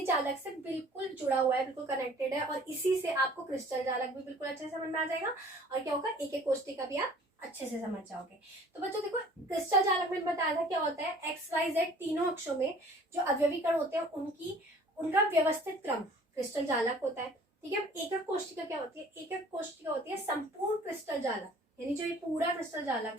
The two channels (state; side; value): normal; both; correlation 0.51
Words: जालक से बिल्कुल जुड़ा हुआ है, बिल्कुल कनेक्टेड है, और इसी से आपको क्रिस्टल जालक भी बिल्कुल अच्छे से समझ में आ जाएगा, और क्या होगा, एकक कोशिका भी आप अच्छे से समझ जाओगे। तो बच्चों देखो, क्रिस्टल जालक में बताया था क्या होता है, एक्स वाई जेड तीनों अक्षों में जो अवयवी कण होते हैं उनका व्यवस्थित क्रम क्रिस्टल जालक होता है। ठीक है, एकक कोशिका क्या होती है? एकक कोशिका होती है संपूर्ण क्रिस्टल जालक, यानी जो ये पूरा क्रिस्टल